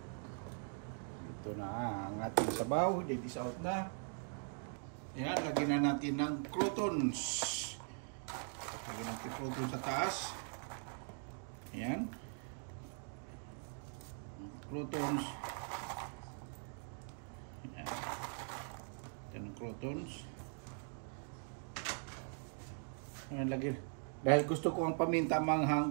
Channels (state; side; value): silent; left; 50 dB below the other